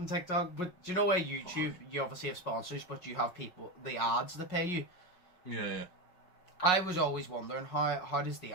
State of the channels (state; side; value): late; right; 5.5 ms